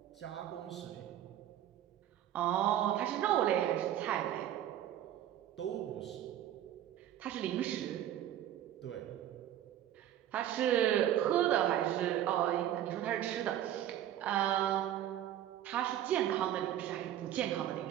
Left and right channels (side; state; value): left; quieter; 11.6 dB